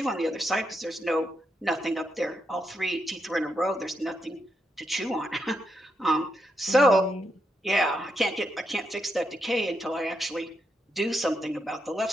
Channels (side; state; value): both; normal; correlation 0.82